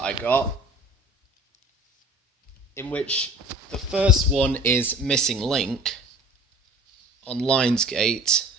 I got, in which the first one is Missing Link on Lionsgate.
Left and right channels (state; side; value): normal; both; correlation 0.44